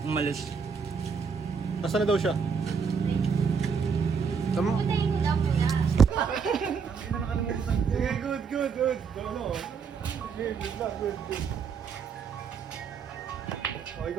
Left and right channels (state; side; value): quieter; left; 5.9 dB